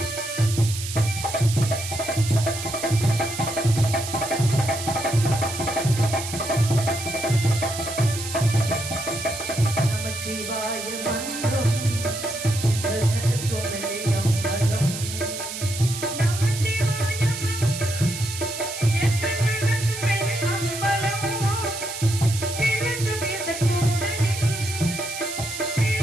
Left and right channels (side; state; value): right; noise; hiss, 8 dB below the sound